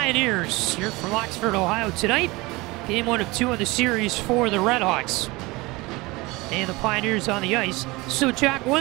here from Oxford, Ohio tonight. Game 1 of 2 of the series for the RedHawks. And the Pioneers on the ice. So Jack,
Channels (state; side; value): quieter; left; 22.8 dB